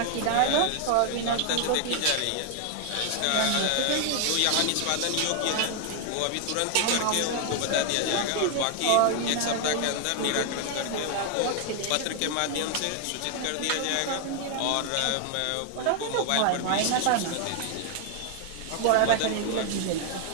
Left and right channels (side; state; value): both; different; correlation 0.00